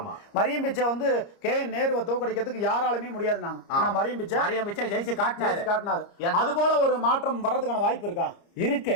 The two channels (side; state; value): right; late; 30 ms